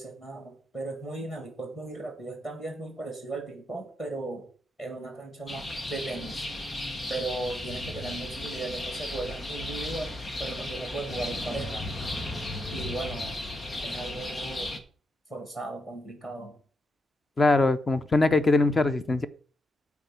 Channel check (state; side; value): normal; both; correlation 0.83